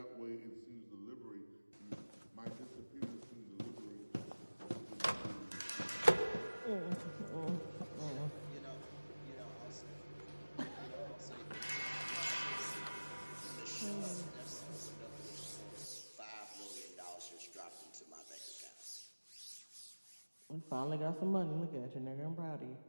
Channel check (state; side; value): inverted; both; correlation -1.00